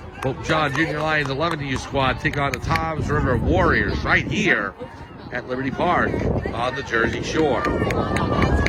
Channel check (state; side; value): identical; both; correlation 1.00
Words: Pope John Junior Lions 11U squad take on the Toms River Warriors right here at Liberty Park on the Jersey Shore.